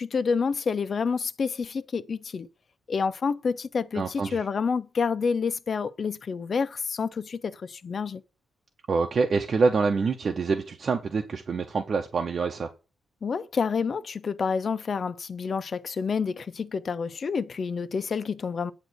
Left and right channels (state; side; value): normal; both; correlation 0.85